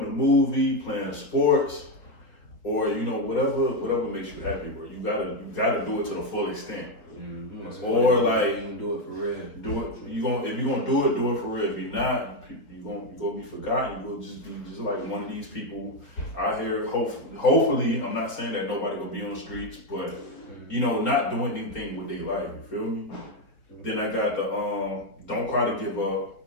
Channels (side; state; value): right; late; 3.8 ms